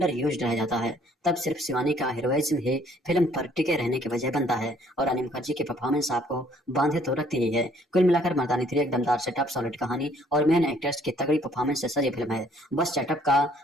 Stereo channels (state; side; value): normal; both; correlation 0.62